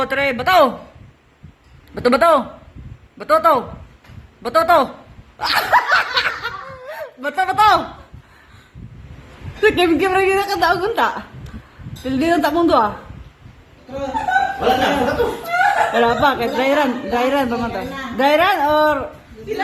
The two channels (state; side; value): identical; both; correlation 1.00